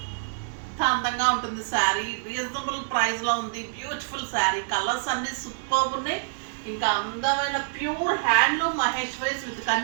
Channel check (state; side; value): silent; left; digital silence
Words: అందంగా ఉంటుంది శారీ. రీజనబుల్ ప్రైస్ లో ఉంది. బ్యూటిఫుల్ శారీ. కలర్స్ అన్ని సూపర్ ఉన్నాయి. ఇంకా అందమైన pure handloom Maheshwaris with